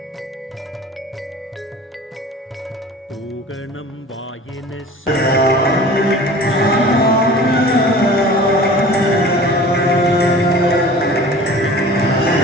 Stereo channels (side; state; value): both; normal; correlation 0.42